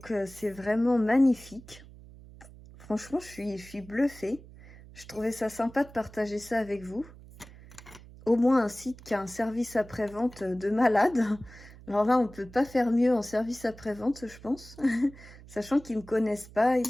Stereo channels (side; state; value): right; noise; hum, 19 dB below the sound